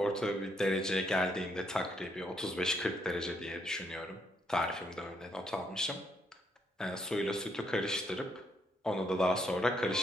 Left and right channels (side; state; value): both; normal; correlation 0.74